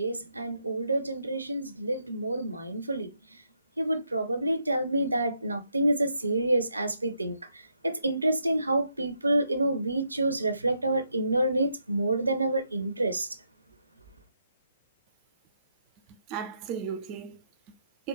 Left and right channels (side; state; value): both; inverted; correlation -0.78